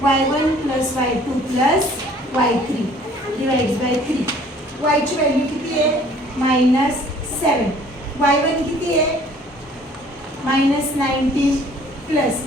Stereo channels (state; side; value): normal; both; correlation 0.54